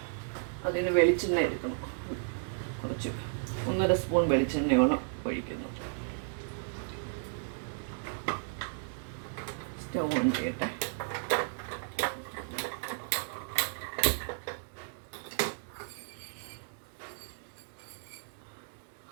അതിന് വെളിച്ചെണ്ണ എടുക്കണം. കുറച്ച് 1.5 സ്പൂൺ വെളിച്ചെണ്ണയോളം ഒഴിക്കുന്നു. സ്റ്റൗ ഓൺ ചെയ്യട്ടെ.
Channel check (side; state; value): left; silent; digital silence